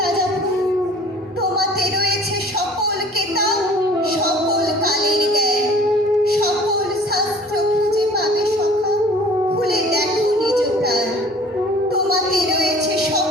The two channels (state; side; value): normal; both; correlation 0.49